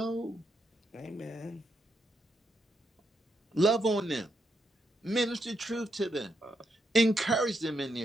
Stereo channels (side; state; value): both; normal; correlation 0.81